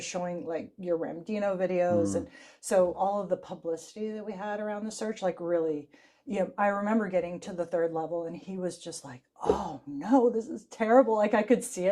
showing your Ramdino videos. And so all of the publicity that we had around the search, really, I remember getting to the 3rd level and he was just like, oh no, this is terrible. I could see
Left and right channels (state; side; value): identical; both; correlation 1.00